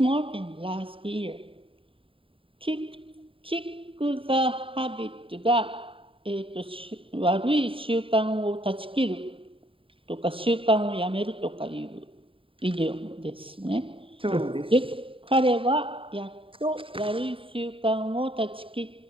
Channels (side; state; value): left; late; 0.26 ms